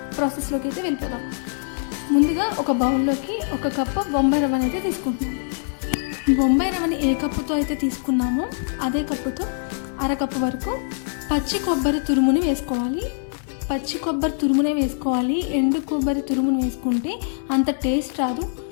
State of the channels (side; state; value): right; silent; 63 dB below the other